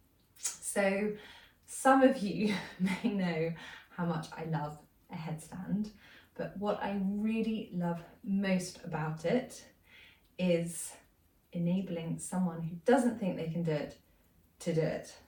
So some of you may know how much I love a headstand, but what I really love most about it is enabling someone who doesn't think they can do it to do it.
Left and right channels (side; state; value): both; identical; correlation 1.00